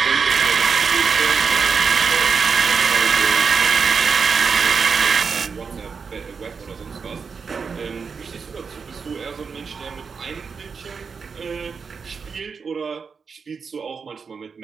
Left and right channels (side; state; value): left; quieter; 5.6 dB